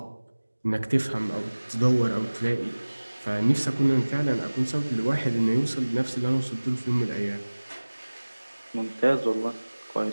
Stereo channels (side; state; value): both; inverted; correlation -1.00